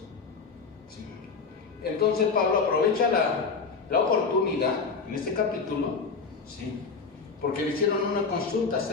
¿sí? Entonces Pablo aprovecha la oportunidad en este capítulo, ¿sí?, porque le hicieron una consulta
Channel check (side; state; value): right; quieter; 4.9 dB